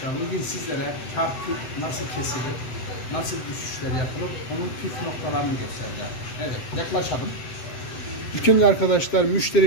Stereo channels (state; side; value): late; right; 7.9 ms